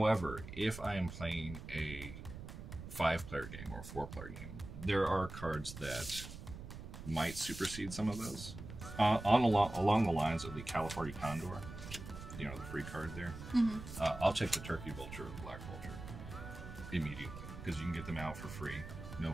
if I am playing a 5-player game or a 4-player game, there are cards that might supersede some of those. Along the lines of the California Condor, you know, the free card there. I'll take the turkey vulture or the black vulture immediately because you can get them out for free, no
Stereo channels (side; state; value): right; noise; rumble, 11 dB below the sound